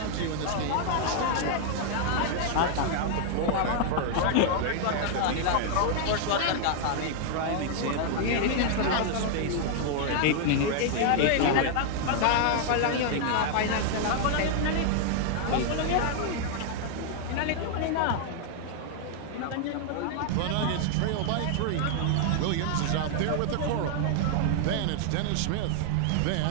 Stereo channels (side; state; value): both; different; correlation -0.01